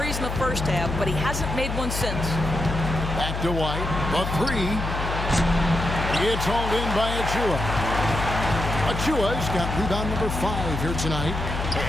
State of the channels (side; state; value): left; noise; hum, 4 dB below the sound